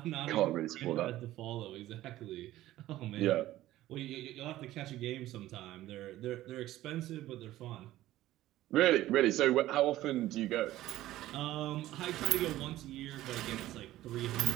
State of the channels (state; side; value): quieter; left; 15.1 dB